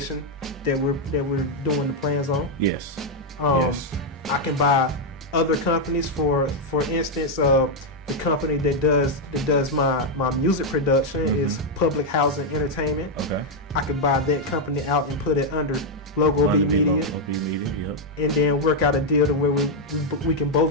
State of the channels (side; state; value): both; normal; correlation 0.00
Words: that we're doing the plans on. Yes. Yes. I can buy other companies. For instance, the company that does my music production is Public Housing Entertainment. Okay. I could buy that company out and put it under Logo B Media. Logo B Media, yep. And then work out a deal to where we can